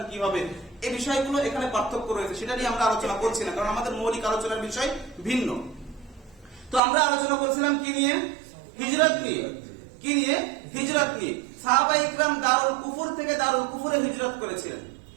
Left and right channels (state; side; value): drops out; left; at 6.8 s